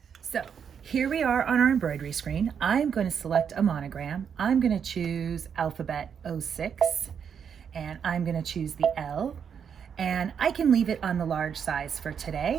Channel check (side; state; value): left; quieter; 7.4 dB